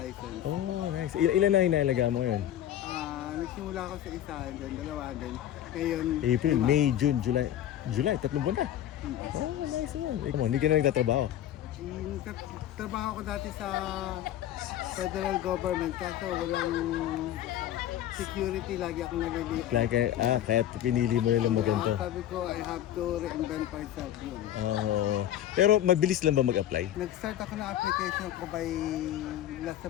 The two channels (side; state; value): right; quieter; 11.8 dB